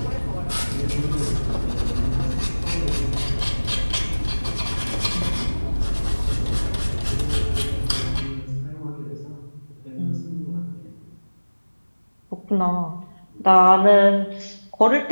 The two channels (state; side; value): inverted; both; correlation -1.00